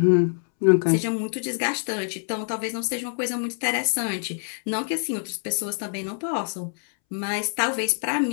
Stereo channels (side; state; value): right; silent; 62 dB below the other